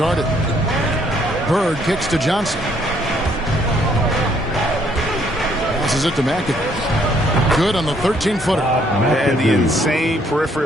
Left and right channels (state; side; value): normal; both; correlation 0.67